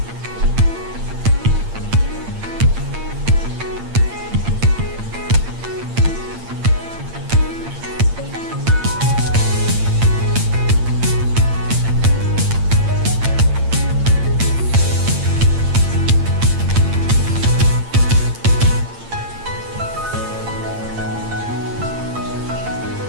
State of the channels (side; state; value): left; late; 8.7 ms